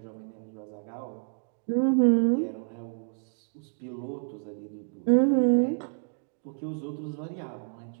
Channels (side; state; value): left; silent; 58 dB below the other